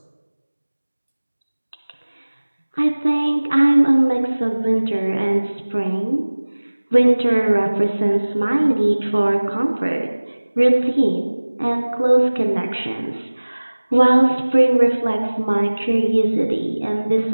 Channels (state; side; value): inverted; both; correlation -1.00